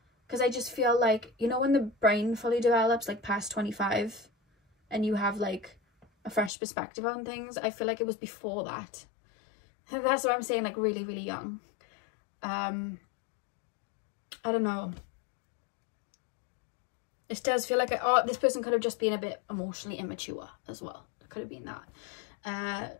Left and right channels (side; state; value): right; drops out; at 6.5 s